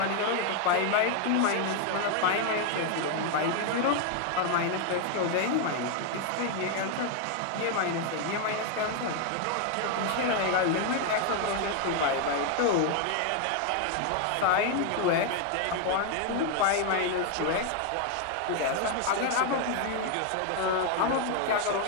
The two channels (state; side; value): different; both; correlation 0.00